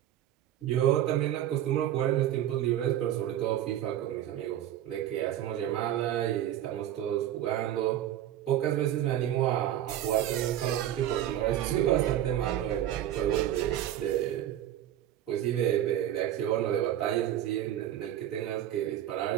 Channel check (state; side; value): quieter; left; 11.9 dB